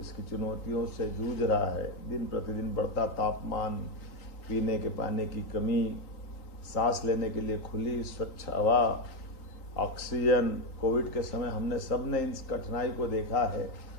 चुनौतियों से जूझ रहा है। दिन प्रतिदिन बढ़ता तापमान, पीने के पानी की कमी, सांस लेने के लिए खुली स्वच्छ हवा, ऑक्सीजन। कोविड के समय हमने सबने इस कठिनाई को देखा है,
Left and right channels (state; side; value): late; right; 3.8 ms